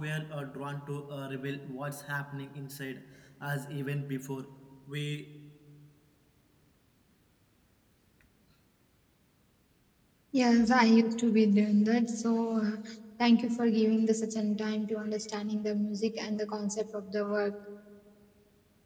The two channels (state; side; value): identical; both; correlation 1.00